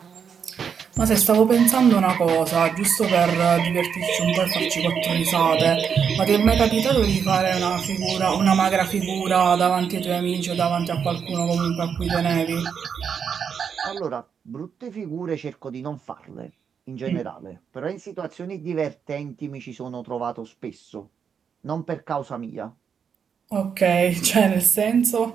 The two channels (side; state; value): left; quieter; 7.0 dB